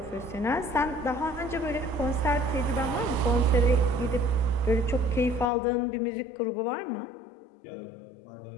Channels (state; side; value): drops out; right; at 5.5 s